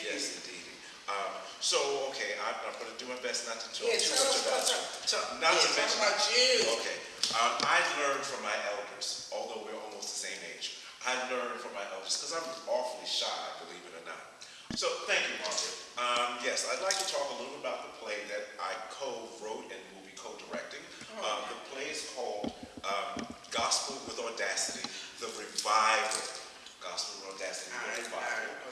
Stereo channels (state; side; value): identical; both; correlation 1.00